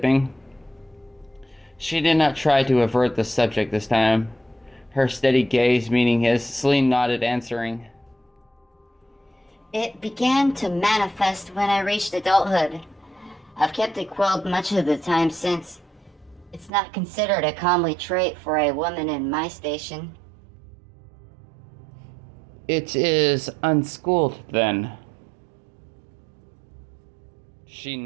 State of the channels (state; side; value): drops out; left; at 16.7 s